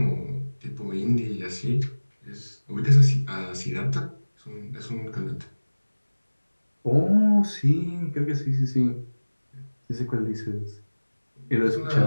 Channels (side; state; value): both; inverted; correlation -1.00